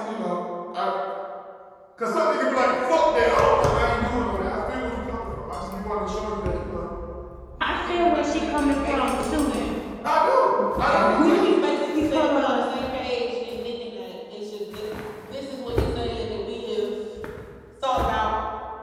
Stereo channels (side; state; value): both; identical; correlation 1.00